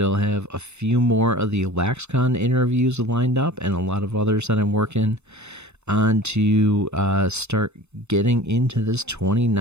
have a few more of the LaxCon interviews lined up and a lot of others that I'm working on to start getting into this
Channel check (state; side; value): late; left; 0.81 ms